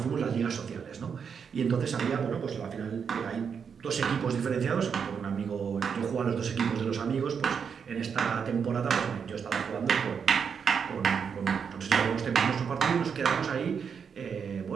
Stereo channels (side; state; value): left; quieter; 6.7 dB